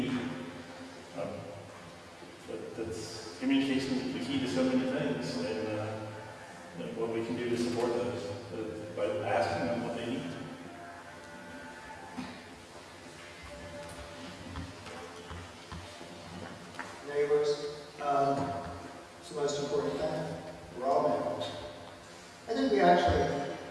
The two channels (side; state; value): both; identical; correlation 1.00